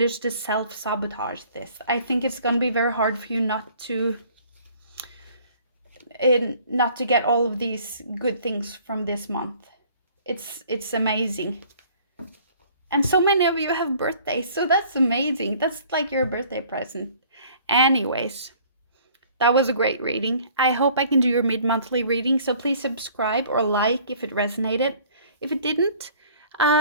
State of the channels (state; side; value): inverted; both; correlation -0.54